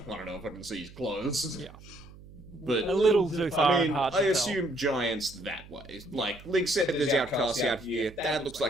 I don't know if I can see his clothes. Yeah. But A little too far I mean, and hard to I tell. assume giants that way. Like, Lig said there's outcasts out here. That looks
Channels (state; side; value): noise; right; hum, 19 dB below the sound